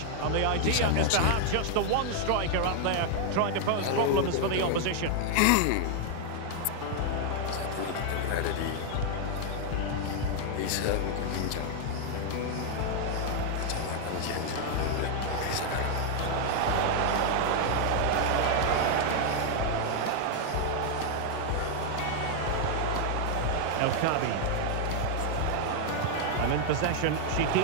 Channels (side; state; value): both; different; correlation 0.00